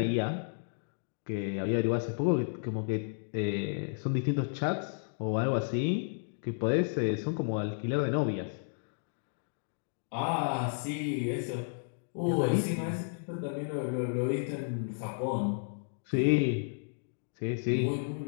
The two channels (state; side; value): silent; right; digital silence